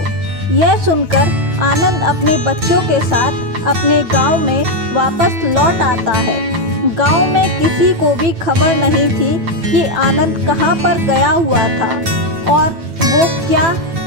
यह सुनकर आनंद अपने बच्चों के साथ अपने गांव में वापस लौट आता है। गांव में किसी को भी खबर नहीं थी कि आनंद कहाँ पर गया हुआ था और वो क्या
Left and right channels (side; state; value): left; late; 9.2 ms